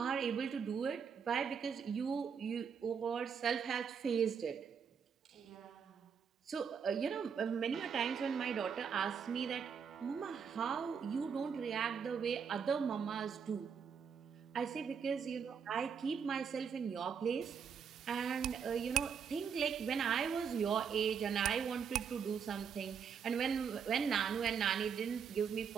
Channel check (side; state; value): left; quieter; 6.8 dB